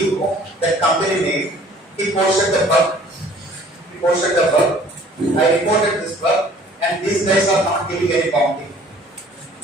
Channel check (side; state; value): both; normal; correlation 0.54